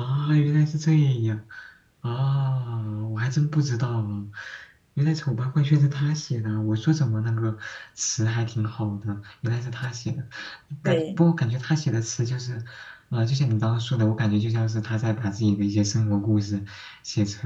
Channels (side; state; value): both; identical; correlation 1.00